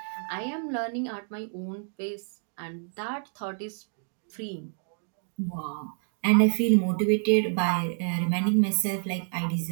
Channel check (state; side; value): silent; left; 59 dB below the other